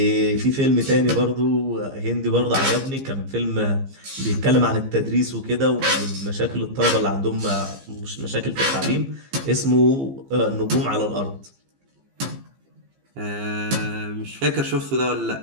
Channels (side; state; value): left; late; 15 ms